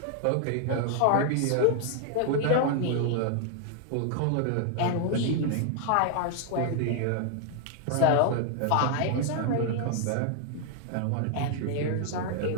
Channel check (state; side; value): different; both; correlation 0.00